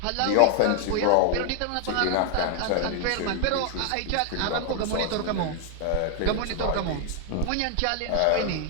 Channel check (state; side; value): different; both; correlation 0.00